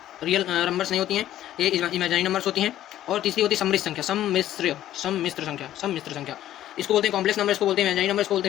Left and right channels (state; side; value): quieter; right; 12.7 dB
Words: रियल नंबर्स नहीं होती हैं, ये इमेजिनरी नंबर्स होती हैं। और तीसरी होती है सम्मिश्र संख्या। इसको बोलते हैं कॉम्प्लेक्स नंबर, इसको बोलते हैं इमेजिनरी नंबर, इसको बोलते